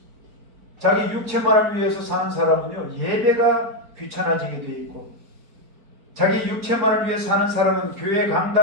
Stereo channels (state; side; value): late; left; 4.8 ms